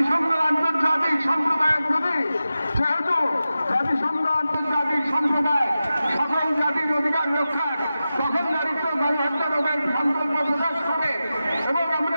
আন্তর্জাতিক সম্প্রদায়ের প্রতি, যেহেতু জাতিসংঘ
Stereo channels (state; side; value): inverted; both; correlation -0.93